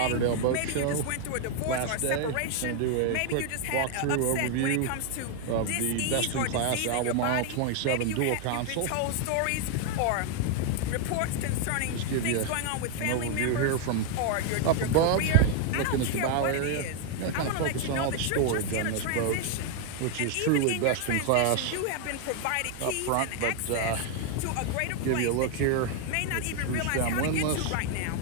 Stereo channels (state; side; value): different; both; correlation 0.00